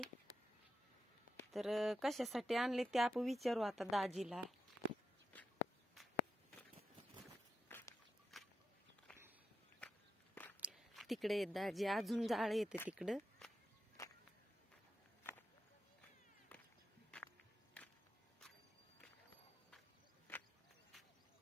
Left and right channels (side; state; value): both; normal; correlation 0.87